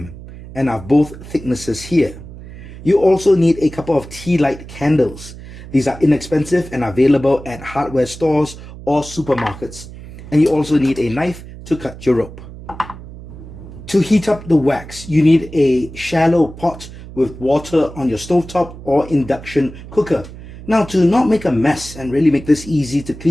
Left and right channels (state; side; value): noise; right; hum, 15 dB below the sound